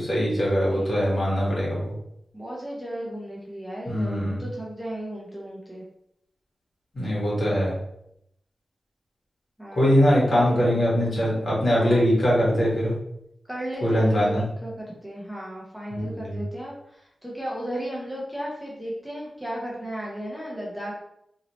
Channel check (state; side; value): normal; both; correlation 0.91